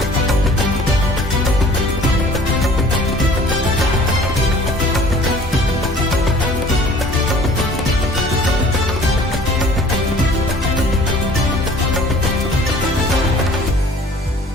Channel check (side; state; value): both; normal; correlation 0.51